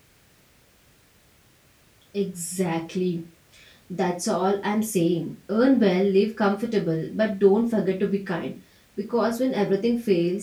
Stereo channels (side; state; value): both; identical; correlation 1.00